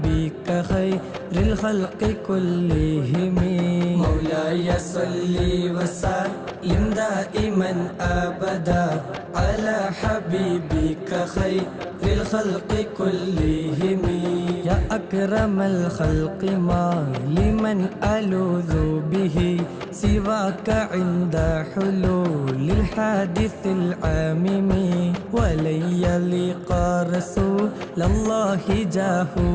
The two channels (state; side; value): identical; both; correlation 1.00